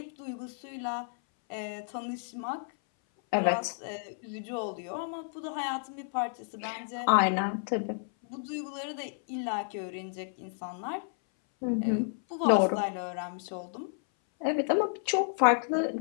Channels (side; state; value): right; silent; 57 dB below the other